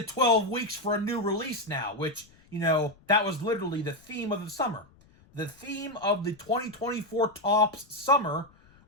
12 weeks for a new release now, which, that was literally the theme of the summer. The theme of the 2024 Topps summer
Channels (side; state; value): left; noise; rumble, 28 dB below the sound